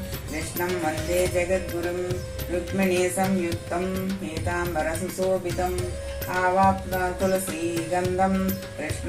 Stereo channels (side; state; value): both; identical; correlation 1.00